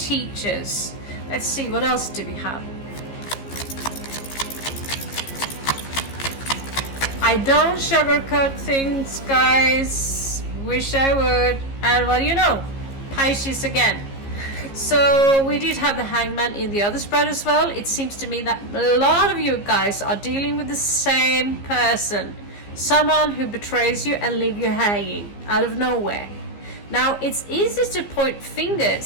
Let's see, what else do we have? I don't sugarcoat things, guys. Wish I would. And what do you know? Pisces again. So we did have the Hangman in the other spread as well. It seems to me that a lot of you guys are dealing with the same person. Someone who betrays you and leave you hanging out of nowhere. Now it's easy to point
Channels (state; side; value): late; right; 15 ms